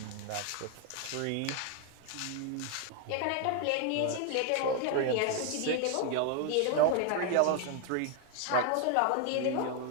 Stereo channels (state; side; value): different; both; correlation 0.01